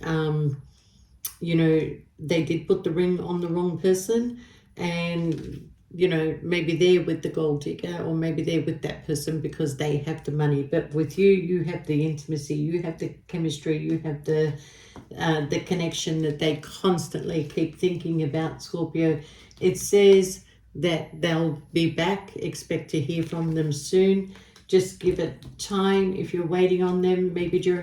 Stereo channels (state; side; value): identical; both; correlation 1.00